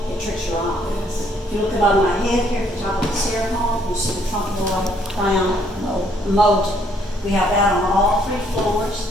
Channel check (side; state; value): both; normal; correlation 0.66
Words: It tricks your eyes. If you look above my head here at the top of the staircase, you see the trompe l'oeil crown molded. We have that on all 3 floors,